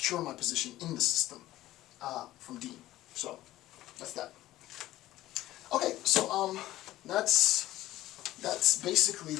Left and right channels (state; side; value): quieter; right; 15.4 dB